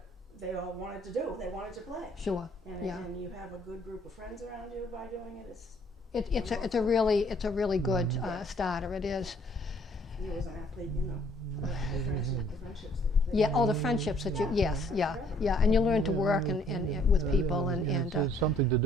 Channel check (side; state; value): both; normal; correlation 0.62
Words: they all wanted to do. They wanted to play. Sure. And, Yeah. and you have a good group of friends around you by doing it. It's a really good starter. It is. You as an athlete, the friendships. Yeah. All the friendships that you. Yes. Yeah. Yeah. And you learn to work and with people and It's something to